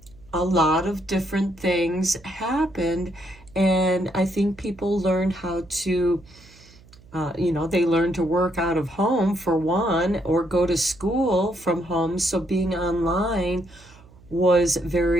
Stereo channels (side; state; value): right; noise; hum, 25 dB below the sound